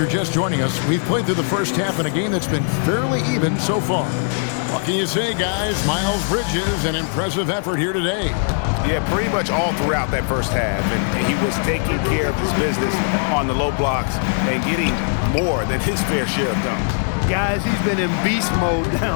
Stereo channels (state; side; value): silent; right; 61 dB below the other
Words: just joining us, we've played through the first half in a game that's been fairly even so far. What can you say, guys? Miles Bridges, an impressive effort here today. Yeah, pretty much all throughout that first half. And he was taking care of his business on the low blocks and getting more than his fair share of dunks. Guys, he's been in beast mode